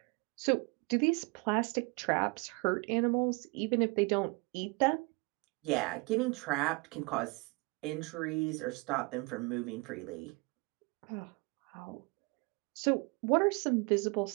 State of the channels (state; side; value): quieter; left; 27.4 dB